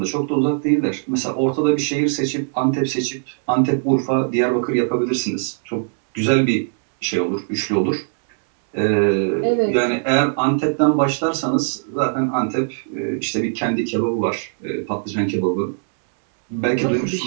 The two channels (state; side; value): silent; left; digital silence